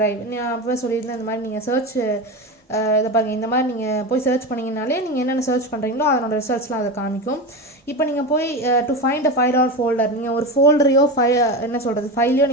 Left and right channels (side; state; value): both; normal; correlation 0.22